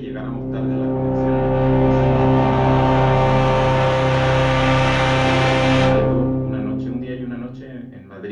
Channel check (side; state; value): both; identical; correlation 1.00